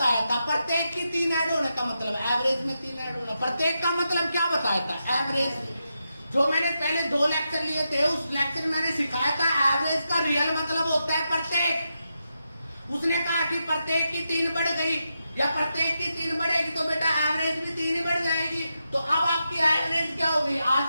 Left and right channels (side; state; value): both; inverted; correlation -0.86